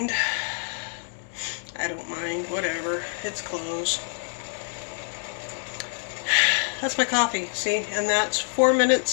I don't mind. Whatever. It's clothes. That's my coffee, see? And that's 4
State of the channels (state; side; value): silent; right; digital silence